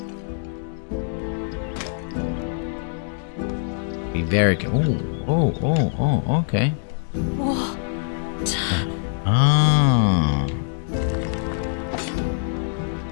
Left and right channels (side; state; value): right; silent; digital silence